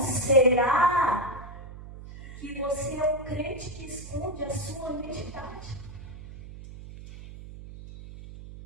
que você é um crente que esconde a sua identidade?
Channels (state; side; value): noise; right; hum, 14 dB below the sound